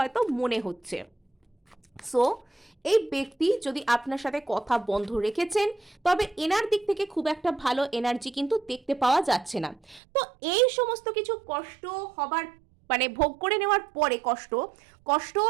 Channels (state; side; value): drops out; left; at 10.0 s